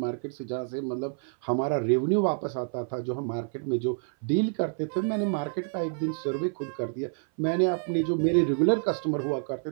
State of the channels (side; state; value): left; silent; 57 dB below the other